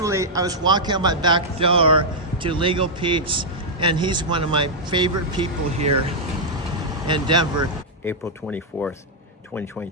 walking out my back door to Legal Pete's, and he's one of my favorite people here in Denver. April 24th,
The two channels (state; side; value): normal; both; correlation -0.06